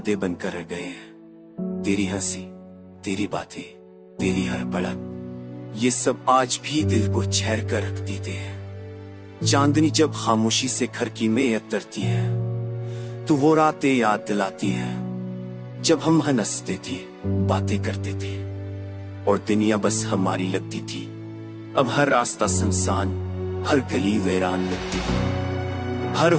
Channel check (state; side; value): identical; both; correlation 1.00